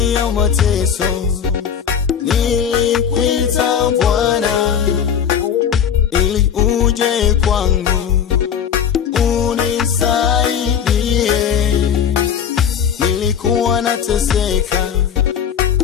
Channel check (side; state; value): right; quieter; 8.1 dB